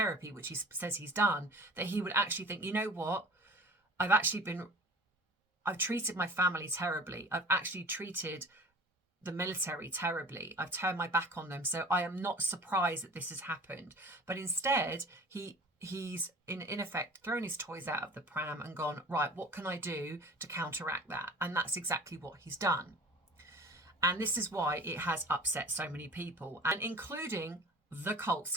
which he says he's done, that he would actually think, you know what, I've treated my family terribly. I've actually treated the military terribly. I've turned my back on them. So I am not surprised that this has happened. But instead, he's in effect thrown his toys out of the pram and gone, right, what can I do to counteract that? And that's exactly what he's done. And this is why it has upset so many people, and including the Cult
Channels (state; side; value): normal; both; correlation 0.42